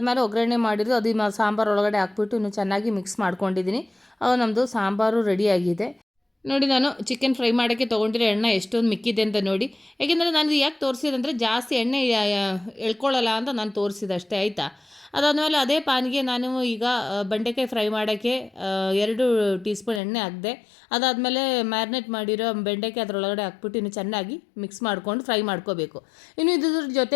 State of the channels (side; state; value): right; drops out; at 20.0 s